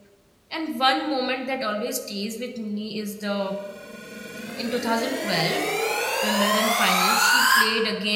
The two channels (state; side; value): identical; both; correlation 1.00